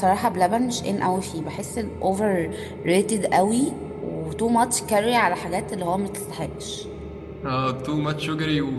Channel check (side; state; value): both; identical; correlation 1.00